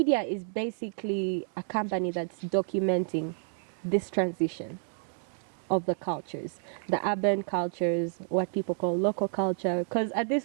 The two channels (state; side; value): silent; left; digital silence